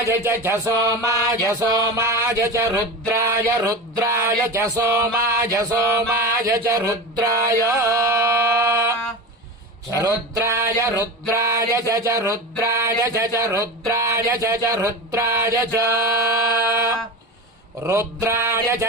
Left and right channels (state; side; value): normal; both; correlation 0.26